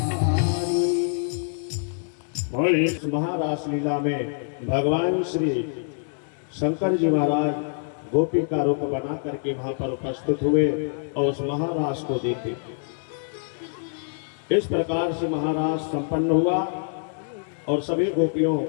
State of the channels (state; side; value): silent; right; digital silence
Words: और इस महारास लीला में भगवान श्री शंकर जी महाराज गोपी का रूप बना करके वहां पर उपस्थित हुए और उस महारास को देखे। इस प्रकार से महारास संपन्न हुआ और सभी गोपियों